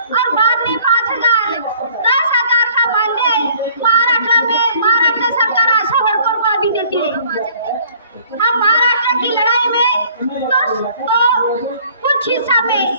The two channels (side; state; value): both; inverted; correlation -0.56